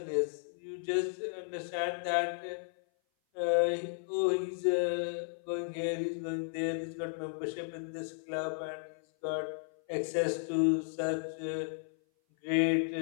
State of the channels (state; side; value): silent; right; 55 dB below the other